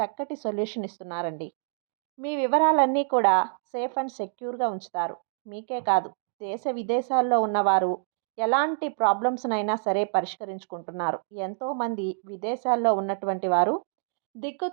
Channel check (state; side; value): silent; left; digital silence